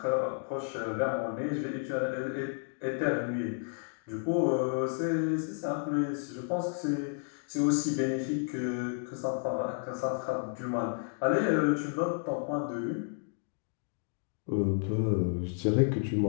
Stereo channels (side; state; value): right; silent; 57 dB below the other